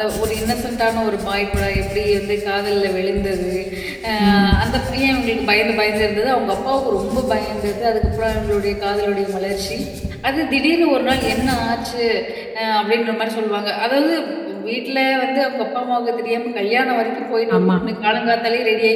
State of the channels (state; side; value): identical; both; correlation 1.00